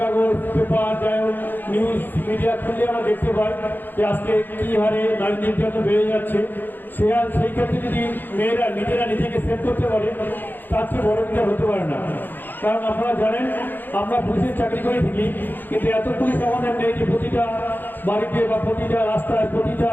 কাগজ, পেপার, যাই হোক নিউজ মিডিয়া খুললে আমরা দেখতে পাই যে আজকে কী হারে নারী নির্যাতন বেড়ে যাচ্ছে। সেই ক্ষেত্রে যদি মেয়েরা নিজেরা নিজেকে সেভ করতে পারে তার চেয়ে বড় কিছু হতে পারে না। কারণ আপনারা জানেন আমরা পুলিশের চাকরি করে থাকি, কিন্তু এত পুলিশ আমাদের নেই যে প্রতিটা বাড়িতে বা প্রতিটা রাস্তায় প্রতিটা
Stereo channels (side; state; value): right; late; 0.091 ms